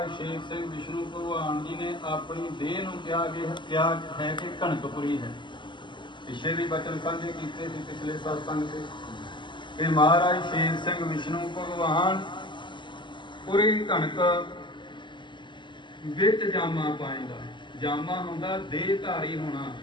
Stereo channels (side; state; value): right; late; 0.23 ms